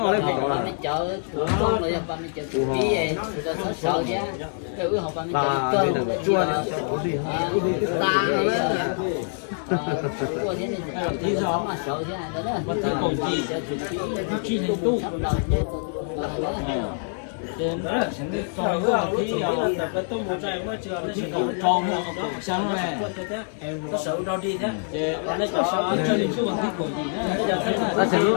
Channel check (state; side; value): silent; right; 62 dB below the other